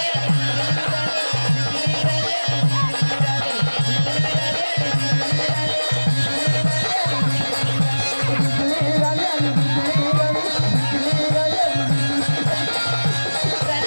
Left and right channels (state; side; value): inverted; both; correlation -1.00